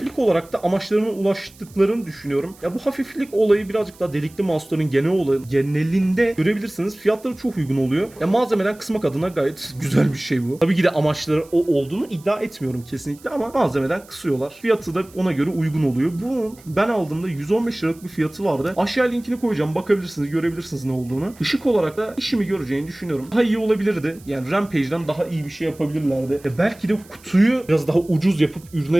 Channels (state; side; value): noise; right; hiss, 25 dB below the sound